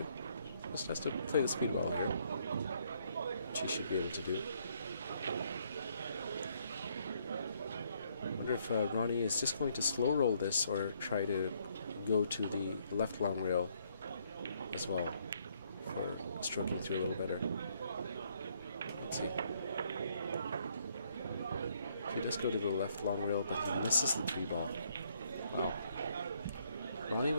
Just has to play the speed well here, which he should be able to do. I wonder if Ronnie is just going to slow roll this or try to go to the left long rail as well for stroking through a little better. Let's see. He does go to the left long rail, but he misses the 3 ball. Wow. Ronnie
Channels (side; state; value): both; inverted; correlation -0.69